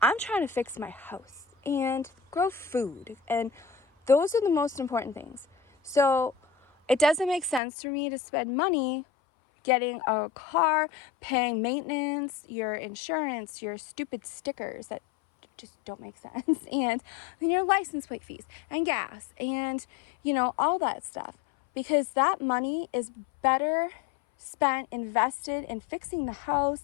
I'm trying to fix my house and grow food. And those are the most important things. So it doesn't make sense for me to spend money getting a car, paying maintenance, your insurance, your stupid stickers that just don't make sense, and then your license plate fees and gas and all that stuff, because that money is better spent, invested in fixing the house,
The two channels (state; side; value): drops out; right; at 7.6 s